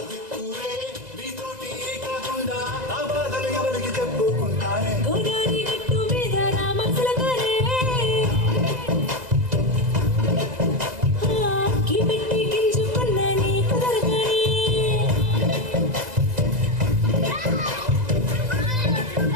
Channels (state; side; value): late; left; 2.0 ms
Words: నీతోటి కాకుండా నా బాధలు ఎవరికి చెప్పుకుంటానే గోదావరి గట్టు మీద రామచిలకరే కిపెట్టి గింజుకున్న నీ కుదరగరే